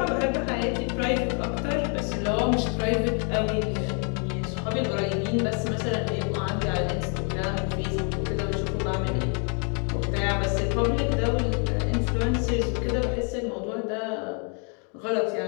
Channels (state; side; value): quieter; right; 39.4 dB